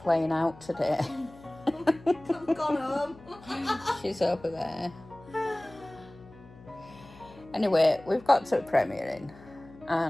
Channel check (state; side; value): noise; left; hum, 21 dB below the sound